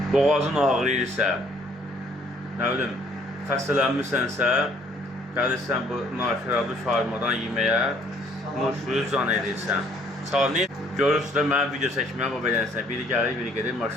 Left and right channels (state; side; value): normal; both; correlation 0.62